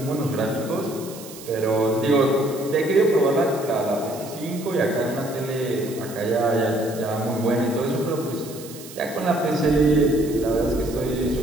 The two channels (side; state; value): right; noise; hiss, 16 dB below the sound